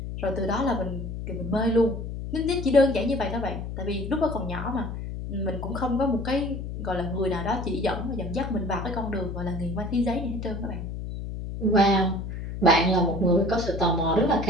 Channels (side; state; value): left; noise; hum, 6 dB below the sound